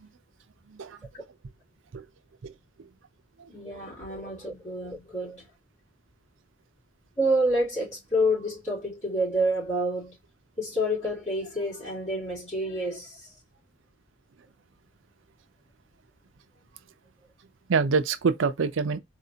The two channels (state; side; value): normal; both; correlation 0.43